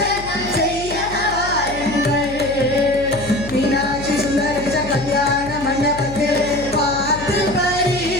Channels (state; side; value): noise; left; hum, 12 dB below the sound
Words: செய்ய வாருங்கள், மீனாட்சி சுந்தரேச கல்யாண மண்டபத்தில் பார்த்து